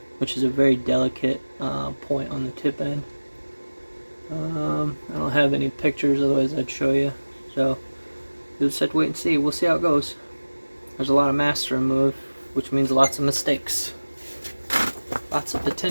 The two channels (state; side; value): inverted; both; correlation -1.00